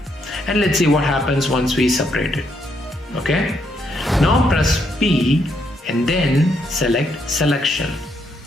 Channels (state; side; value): normal; both; correlation 0.75